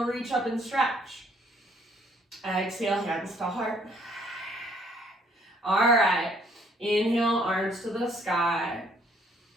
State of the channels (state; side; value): normal; both; correlation 0.64